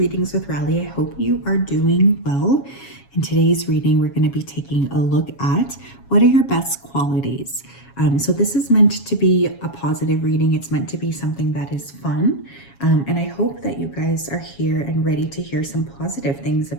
with Rally. I hope you are doing well. In today's reading, we're going to be taking a look at what are your best qualities. So this is meant to be a positive reading. It's meant to be something that is fun. And I hope that you guys are here and ready to hear some positive things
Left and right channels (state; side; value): late; right; 7.3 ms